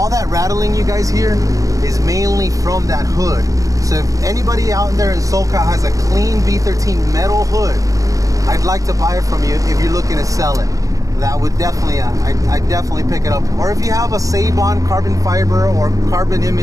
that rattling you guys hear is mainly from that hood. So if anybody out there in SoCal has a clean V13 metal hood, I'd like to buy it from you if you're looking to sell it. That would definitely, I'd definitely pick it up. Or if you have a Save-On carbon fiber or Carbon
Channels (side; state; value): left; late; 0.16 ms